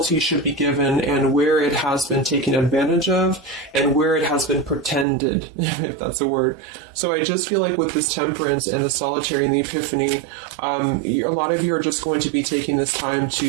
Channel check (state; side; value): drops out; left; at 5.1 s